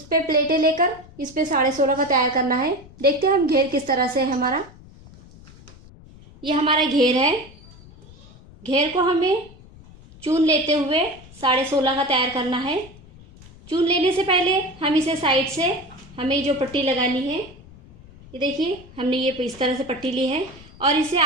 पे प्लेटें लेकर इस पे 16.5 का तैयार करना है। देखते हैं हम घेर किस तरह से है हमारा। ये हमारा घेर है। घेर को हमें चून लेते हुए 16.5 का तैयार करना है। चून लेने से पहले हम इसे साइड से हमें जो पट्टी लगानी है, ये देखिए हमने ये इस तरह से पट्टी ली है और इसे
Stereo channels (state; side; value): noise; left; rumble, 21 dB below the sound